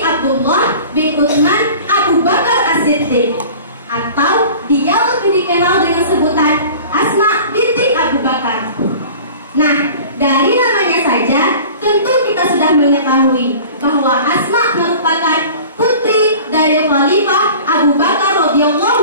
Abdullah bin Utsman Abu Bakar As-Siddiq, atau dia lebih dikenal dengan sebutan Asma binti Abu Bakar. Nah, dari namanya saja tentu kita sudah mengetahui bahwa Asma merupakan putri dari Khalifah Abu Bakar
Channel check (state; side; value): inverted; both; correlation -0.42